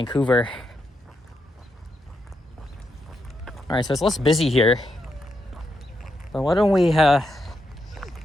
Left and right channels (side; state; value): both; normal; correlation 0.82